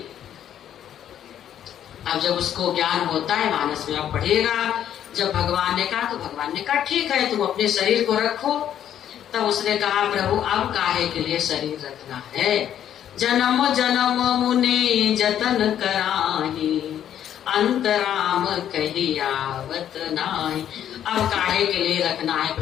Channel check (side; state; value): right; quieter; 10.3 dB